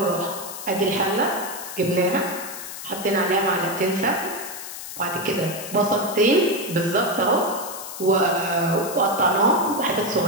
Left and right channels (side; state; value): left; noise; hiss, 10 dB below the sound